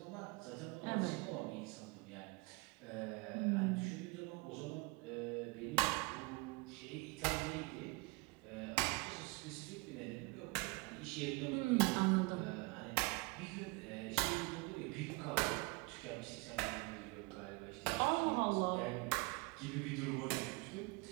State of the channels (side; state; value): left; quieter; 26.9 dB